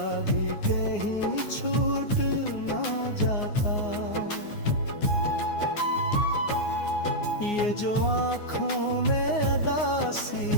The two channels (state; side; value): late; right; 9.6 ms